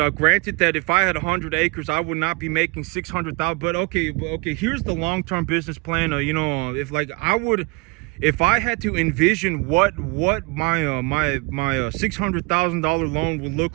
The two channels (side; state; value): left; quieter; 27.0 dB